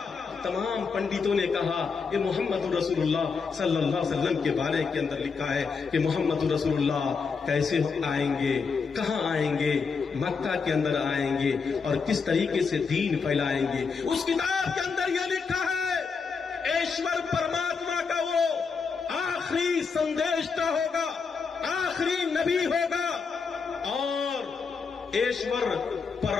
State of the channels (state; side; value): quieter; right; 5.3 dB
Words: تمام پنڈتوں نے کہا کہ محمد رسول اللہ صلی اللہ علیہ وسلم کے بارے کے اندر لکھا ہے کہ محمد رسول اللہ کیسے آئیں گے، کہاں آئیں گے، مکہ کے اندر آئیں گے اور کس طریقے سے دین پھیلائیں گے۔ اس کتاب کے اندر یہ لکھا ہے ایشور پرماتما کا وہ آخری سندیشتا ہوگا، آخری نبی ہوگا، اور ایشور